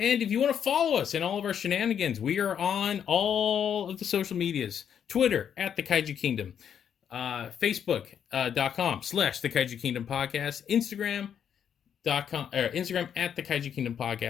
if you want to follow us in all of our shenanigans, we are on all of the social medias. Twitter, at the Kaiju Kingdom. Facebook.com/the Kaiju Kingdom Podcast. Instagram at the Kaiju Kingdom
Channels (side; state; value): right; quieter; 8.5 dB